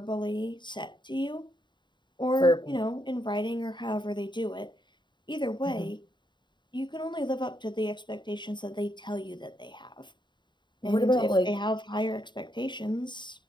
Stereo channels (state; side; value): late; right; 0.22 ms